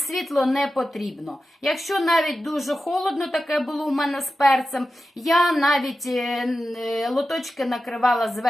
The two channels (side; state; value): both; normal; correlation 0.92